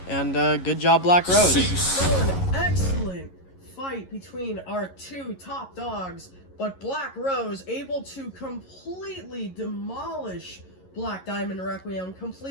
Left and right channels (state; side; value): late; right; 11 ms